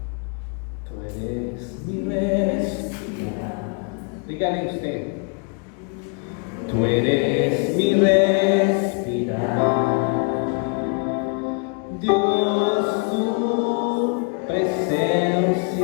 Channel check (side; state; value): right; quieter; 35.4 dB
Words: Tú eres mi respirar. Dígale usted. Tú eres mi respirar. Dios, tu